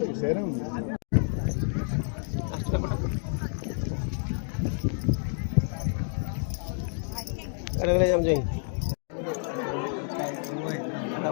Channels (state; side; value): silent; right; 59 dB below the other